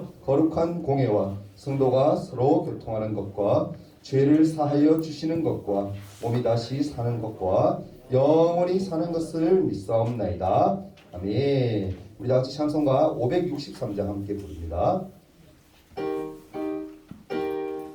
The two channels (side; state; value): both; identical; correlation 1.00